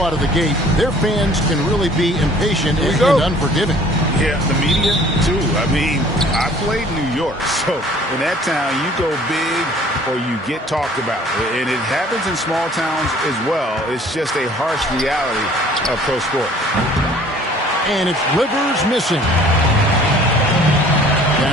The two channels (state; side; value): normal; both; correlation 0.53